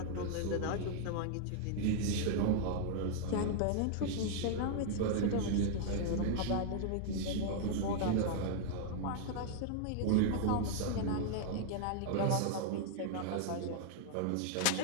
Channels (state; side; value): different; both; correlation 0.00